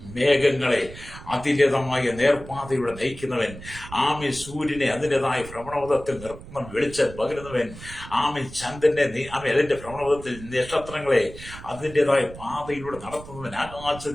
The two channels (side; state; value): right; noise; rumble, 15 dB below the sound